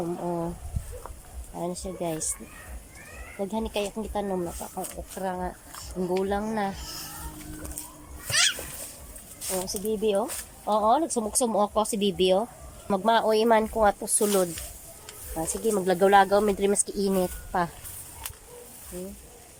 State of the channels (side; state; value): both; identical; correlation 1.00